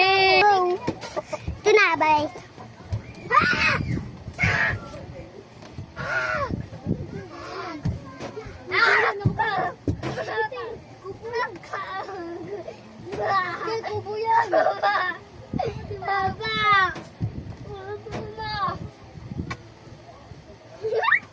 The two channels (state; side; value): identical; both; correlation 1.00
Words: Ito na, bye.